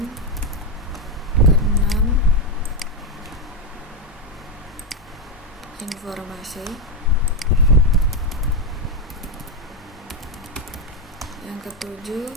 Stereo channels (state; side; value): normal; both; correlation 0.07